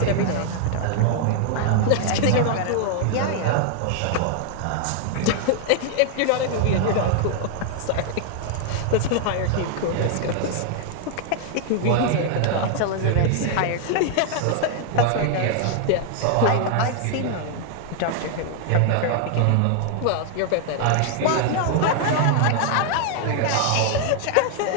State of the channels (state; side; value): different; both; correlation 0.00